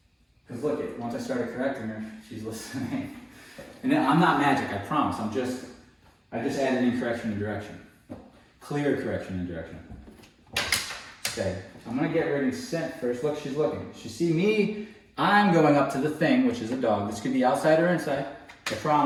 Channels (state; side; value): identical; both; correlation 1.00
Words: Because look, once I started correcting her, she's listening. And then, I'm not magic, I promise. I just added in correction and direction. Clear correction and direction. Okay, I'm gonna get ready to scent first. Look, she's looking. She see me, I'm going up to the thing, which is a dog. This could be outside or inside. I